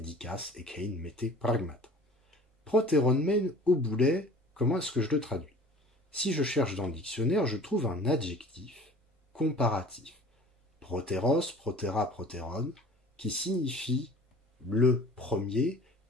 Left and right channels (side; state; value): both; normal; correlation 0.45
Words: ekein mette pragmata. Proteronmen au boulet, comment est-ce que je le traduis? Si je cherche dans le dictionnaire, je trouve un adjectif comparatif. Proteros, protera, proteron, qui signifie le premier,